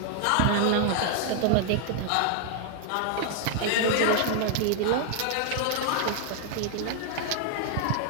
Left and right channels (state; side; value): different; both; correlation 0.00